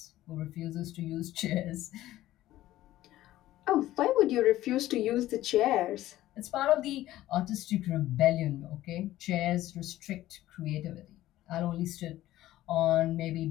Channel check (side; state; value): right; quieter; 14.9 dB